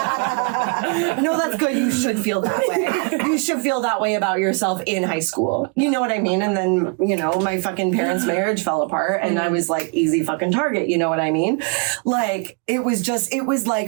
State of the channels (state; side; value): quieter; left; 34.0 dB